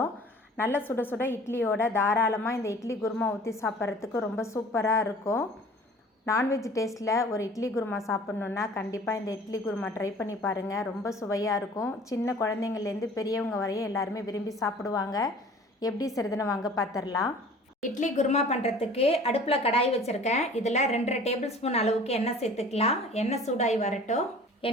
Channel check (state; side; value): normal; both; correlation 0.47